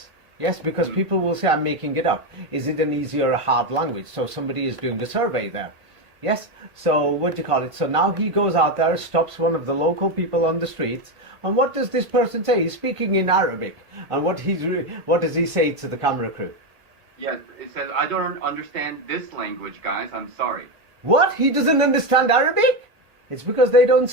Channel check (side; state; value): left; late; 1.5 ms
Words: Yes, because people will say I'm making it up. Is it an easy or a hard language? So somebody is doing the survey there. Yes, so what do you call it? So now he goes out there, stops one of the local people on the streets, and what does this person say? He's speaking in Arabic. And what does he say to the camera crew? Yes, it says, I don't understand this language, guys. I'm sorry. What? He doesn't understand Arabic? It's because they don't